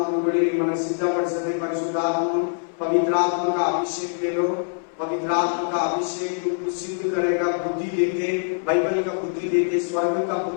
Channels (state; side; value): silent; right; 61 dB below the other